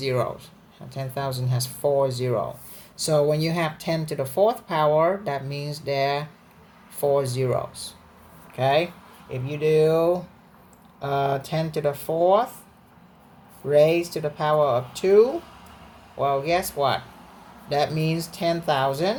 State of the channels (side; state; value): both; identical; correlation 1.00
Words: 10,000 has 4 zeros. So when you have 10 to the 4th power, that means there are 4 zeros. Okay? If you do 10 to the 4th raised to the power of 2, well, guess what? That means